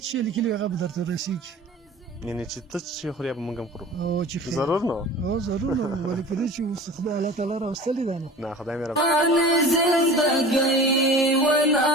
څه لیکلي هغه به درته رسېږي. یعنې چې ته چې خورې به موږ هم خورو او چې ضرور نو ضرور نو ولې په دې چې اوس خدای الله تعالی راوستلي ده نو نه خدای مې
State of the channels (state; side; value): normal; both; correlation 0.39